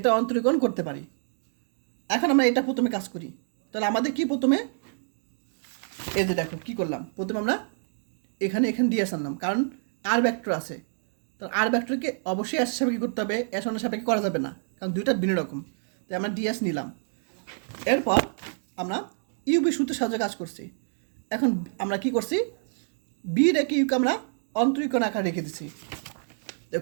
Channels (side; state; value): left; silent; digital silence